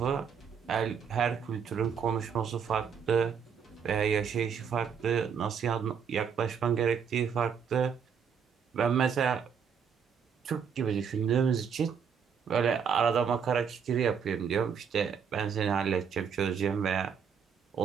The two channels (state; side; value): quieter; left; 7.0 dB